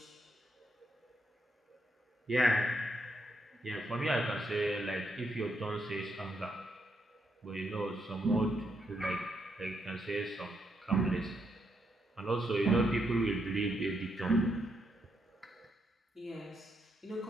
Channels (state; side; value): normal; both; correlation 0.79